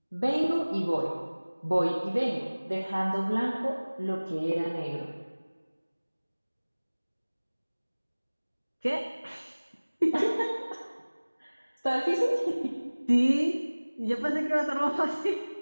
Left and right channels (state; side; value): inverted; both; correlation -1.00